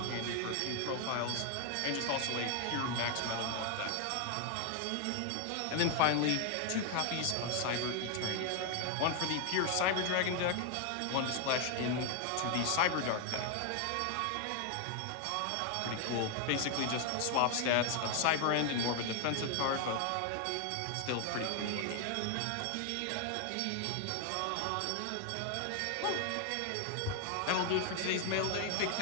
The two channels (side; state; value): both; different; correlation 0.00